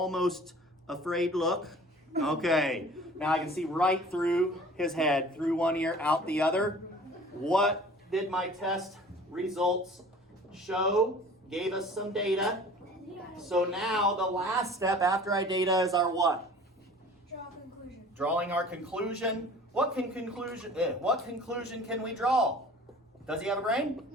afraid look. Okay, now I can see right through his head, through one ear, out the other. What did my test results show? Gave us some data. So now the last step after our data is our what? Draw a conclusion. Drawing our conclusion. What conclusion can we draw? Does he have a brain?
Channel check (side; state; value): both; normal; correlation 0.46